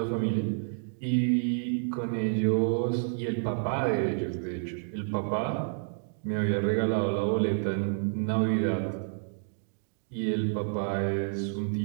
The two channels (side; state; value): left; silent; digital silence